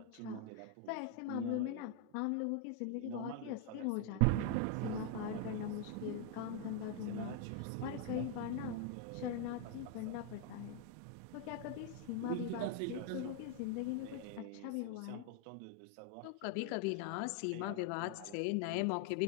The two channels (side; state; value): both; different; correlation 0.00